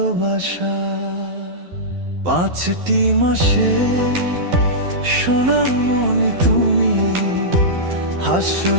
5টি মাসে সোনামণি তুমি,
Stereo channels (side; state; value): left; late; 12 ms